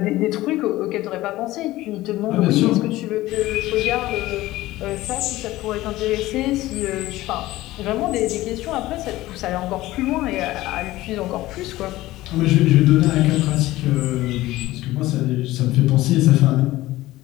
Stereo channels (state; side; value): quieter; right; 17.1 dB